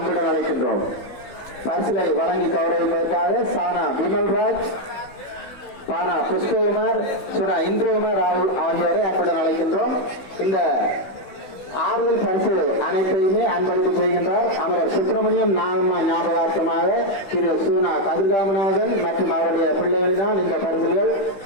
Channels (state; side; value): late; right; 16 ms